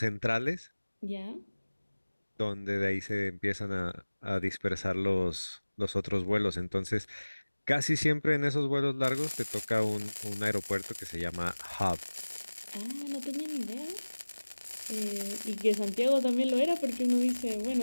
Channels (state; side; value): inverted; both; correlation -1.00